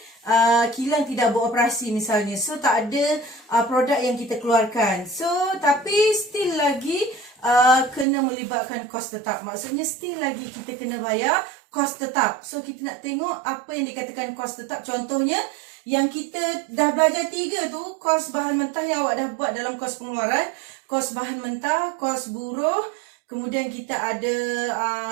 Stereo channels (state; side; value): drops out; left; at 8.1 s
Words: kilang tidak beroperasi misalnya. So tak ada produk yang kita keluarkan. So tapi still lagi kena melibatkan kos tetap. Maksudnya still lagi kita kena bayar kos tetap. So kita nak tengok apa yang dikatakan kos tetap. Contohnya yang kita dah belajar 3 tu, kos bahan mentah yang awak dah buat dalam kos pengeluaran, kos bahan mentah, kos buruh. Kemudian kita ada